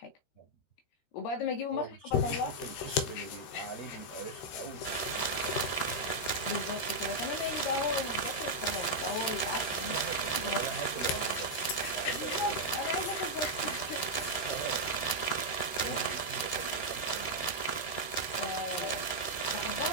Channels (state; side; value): late; right; 13 ms